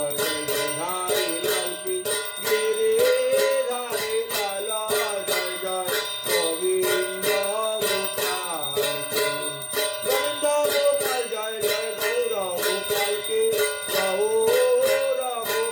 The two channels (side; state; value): both; identical; correlation 1.00